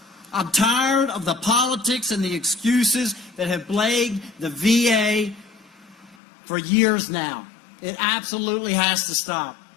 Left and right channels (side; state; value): right; drops out; at 6.2 s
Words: I'm tired of the politics and the excuses that have plagued the VA for years now. It absolutely has to stop.